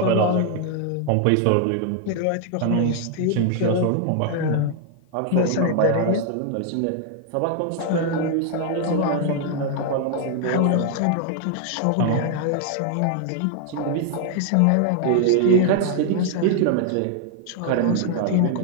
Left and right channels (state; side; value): different; both; correlation 0.00